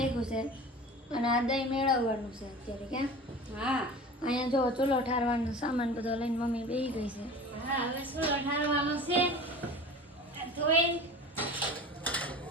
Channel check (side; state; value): both; normal; correlation 0.37